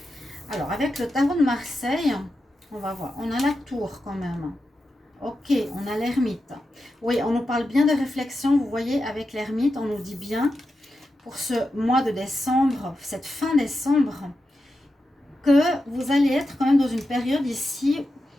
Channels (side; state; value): both; normal; correlation 0.89